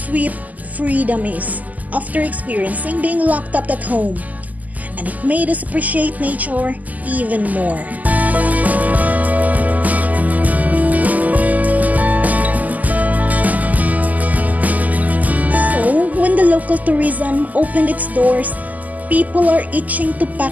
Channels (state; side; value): late; left; 0.079 ms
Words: freedom is after experiencing being locked up at home. And it made us appreciate nature even more. So, when the local tourism opened its doors, people are itching to pack